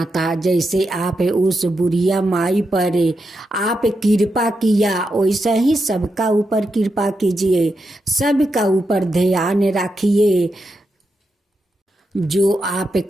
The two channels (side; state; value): both; normal; correlation 0.86